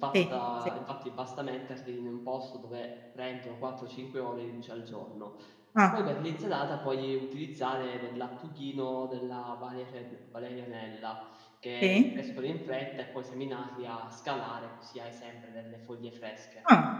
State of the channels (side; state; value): both; identical; correlation 1.00